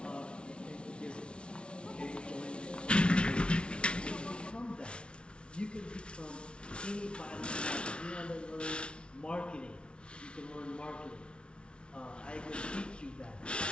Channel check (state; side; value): late; right; 0.058 ms